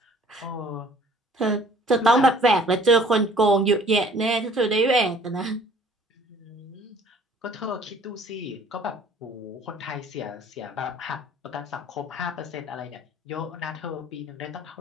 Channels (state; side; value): normal; both; correlation 0.54